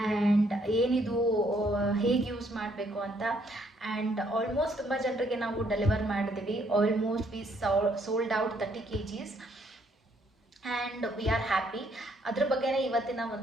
ಆ್ಯಂಡ್ ಏನಿದು, ಹೇಗೆ ಯೂಸ್ ಮಾಡಬೇಕು ಅಂತ. ಆ್ಯಂಡ್ ಆಲ್ಮೋಸ್ಟ್ ತುಂಬ ಜನರಿಗೆ ನಾವು ಡೆಲಿವರ್ ಮಾಡಿದ್ದೀವಿ. Almost V sold out 30 kgs and we are happy. ಅದ್ರ ಬಗ್ಗೆನೇ ಇವತ್ತಿನ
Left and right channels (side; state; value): both; normal; correlation 0.69